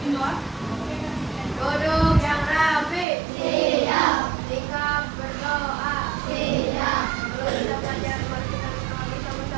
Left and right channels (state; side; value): drops out; left; at 3.1 s